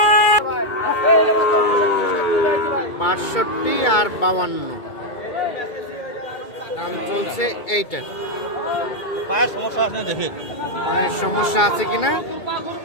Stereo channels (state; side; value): late; right; 2.3 ms